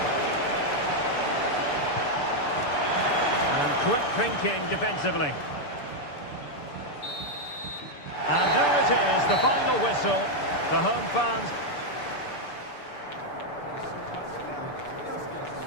And quick thinking defensively. And there it is, the final whistle. The home fans...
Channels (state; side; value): late; right; 6.9 ms